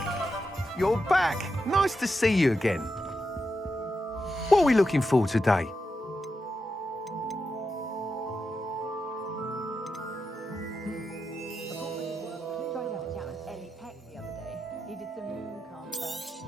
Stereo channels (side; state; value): both; normal; correlation 0.87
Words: You're back. Nice to see you again. What are we looking for today?